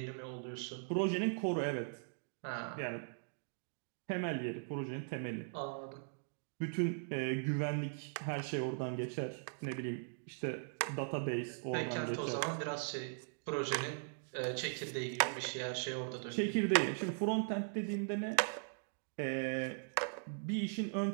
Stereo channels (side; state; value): left; silent; digital silence